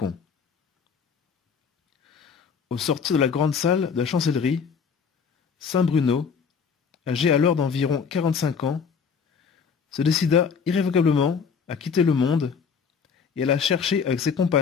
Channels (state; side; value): quieter; right; 6.1 dB